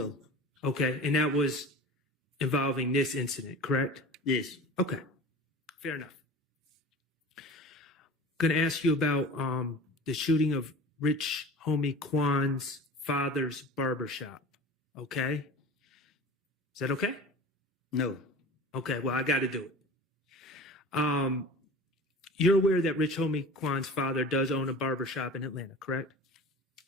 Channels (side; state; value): both; normal; correlation 0.37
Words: Okay. And that was involving this incident, correct? Yes. Okay. Fair enough. Going to ask you about the shooting of Rich Homie Kwan's father's barbershop. Okay? Is that okay? No. Okay, well, I got to do it. You're aware that Rich Homie Kwan's father does own a barbershop in Atlanta, correct?